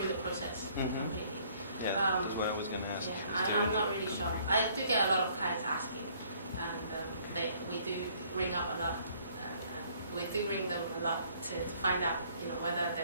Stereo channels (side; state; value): both; inverted; correlation -0.61